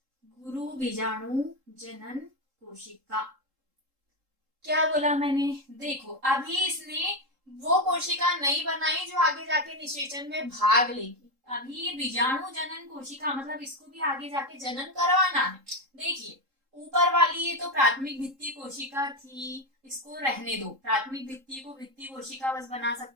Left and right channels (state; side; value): late; left; 3.7 ms